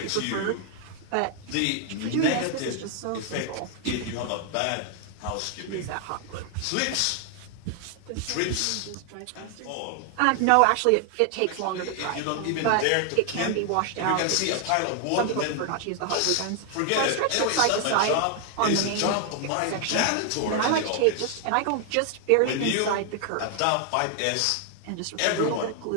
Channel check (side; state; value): both; different; correlation 0.00